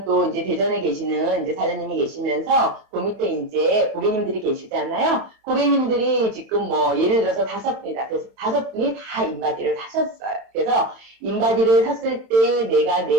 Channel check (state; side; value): late; left; 31 ms